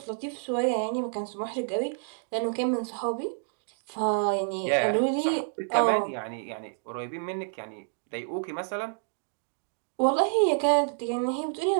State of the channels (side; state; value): left; silent; digital silence